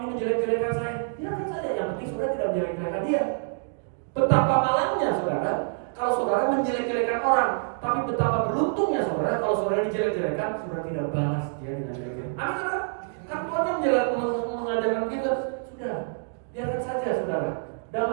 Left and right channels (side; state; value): left; silent; digital silence